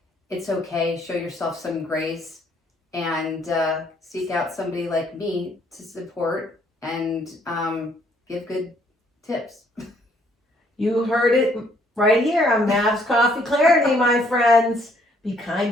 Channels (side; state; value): both; normal; correlation 0.66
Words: It's okay. Show yourself some grace and seek out somebody like me to support and give good tips. You heard it right here on Mavs Coffee Clarity, my friends. Be kind